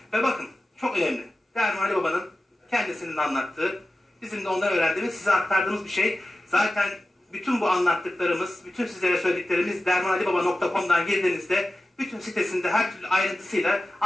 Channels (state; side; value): normal; both; correlation 0.94